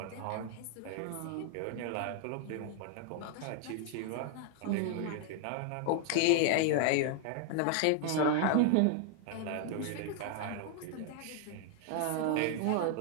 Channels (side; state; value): both; different; correlation 0.00